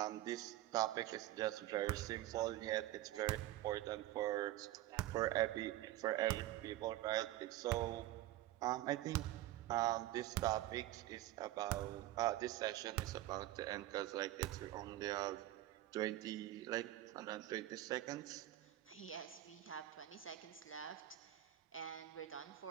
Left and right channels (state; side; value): quieter; left; 14.9 dB